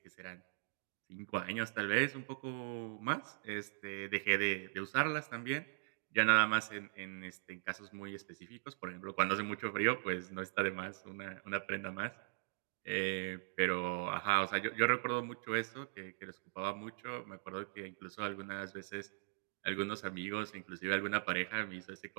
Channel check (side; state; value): left; silent; digital silence